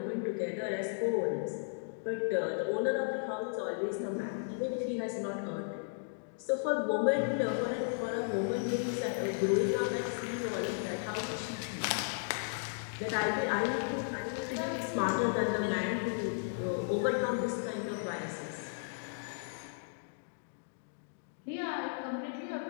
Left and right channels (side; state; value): right; silent; digital silence